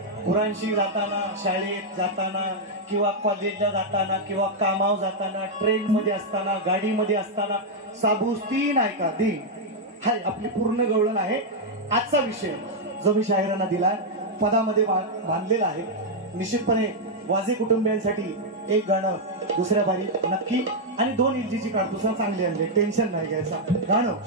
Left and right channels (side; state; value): both; normal; correlation -0.03